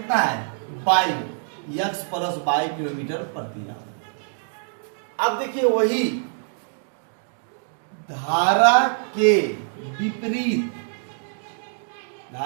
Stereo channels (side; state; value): left; silent; digital silence